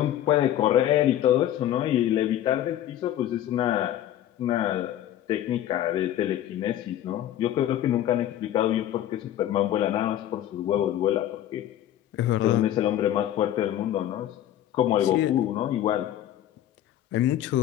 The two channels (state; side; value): quieter; right; 12.0 dB